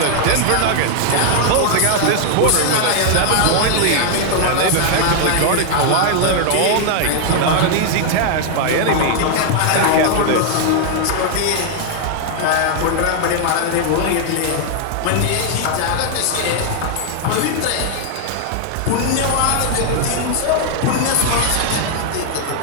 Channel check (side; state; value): both; different; correlation 0.00